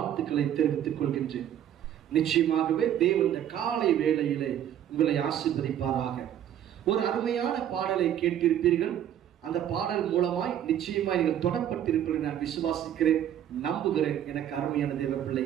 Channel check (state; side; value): quieter; left; 10.6 dB